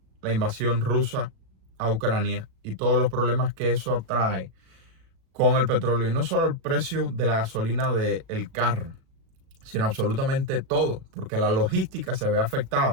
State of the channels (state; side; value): late; left; 37 ms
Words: la invasión rusa a Ucrania y todos los problemas que eso atrae con el petróleo, y no solo el precio de la gasolina del carro, sino absolutamente todo, porque la logística se ve